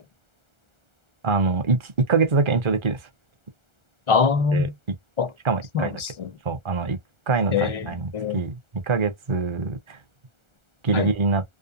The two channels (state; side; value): late; left; 1.4 ms